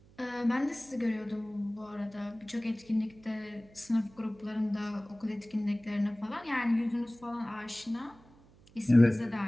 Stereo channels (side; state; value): right; noise; hum, 26 dB below the sound